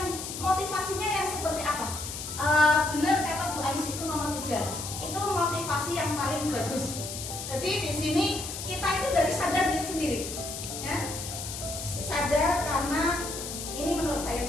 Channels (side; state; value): left; noise; hiss, 7 dB below the sound